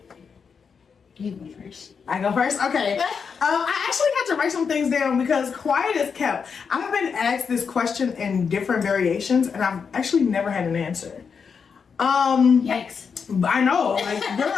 You go first. I go first? Okay. I actually had to write some things down because quiet is kept. I've been asked this question in different variations and I've actually never had an answer. Yikes. I know, like,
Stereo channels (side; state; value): right; quieter; 6.0 dB